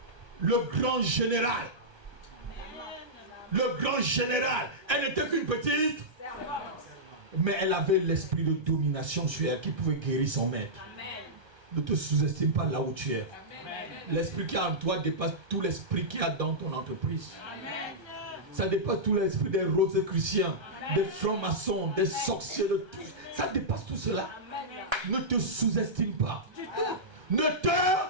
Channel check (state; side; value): late; left; 1.3 ms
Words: le grand général. Le grand général, elle n'était qu'une petite servante. Mais elle avait l'esprit de domination sur elle qui pouvait guérir son maître. Amen. Ne te sous-estime pas là où tu es. L'esprit qui est en toi dépasse tout l'esprit qu'il y a dans ton entreprise. Amen. Ça dépasse tout l'esprit des roses chrétiens, des francs-maçons, des sorciers, de tout. Ça dépasse tout cela. Amen. Ne te sous-estime pas. Ne te